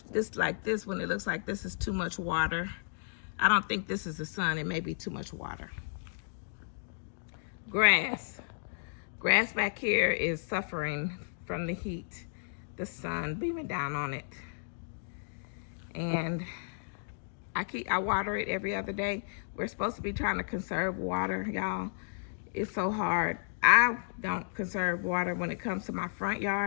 like this one, it looks like this is too much water. I don't think this is the sun. It may be too much water. Grass. Grass back here is suffering from the heat, the sun beaming down on it. And I water it every other day. We're supposed to be trying to conserve water, y'all. It's so hard. I don't conserve water when it comes to my front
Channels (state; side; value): silent; right; digital silence